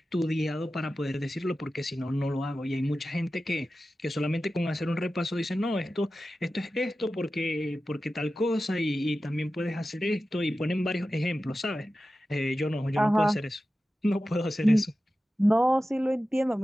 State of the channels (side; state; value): both; normal; correlation 0.94